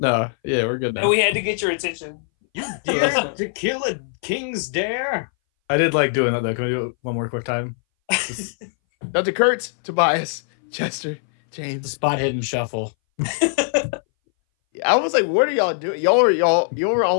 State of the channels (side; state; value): right; silent; 61 dB below the other